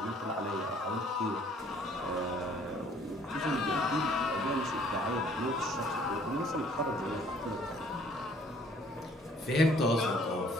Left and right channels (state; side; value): normal; both; correlation 0.59